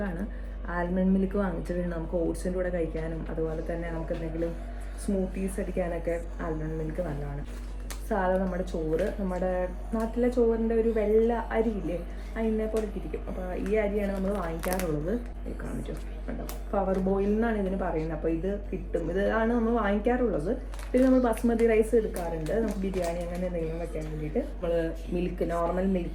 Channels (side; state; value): both; identical; correlation 1.00